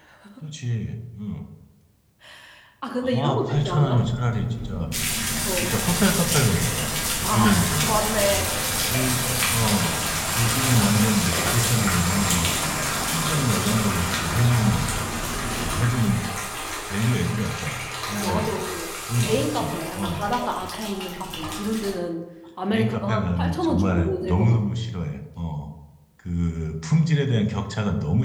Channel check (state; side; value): identical; both; correlation 1.00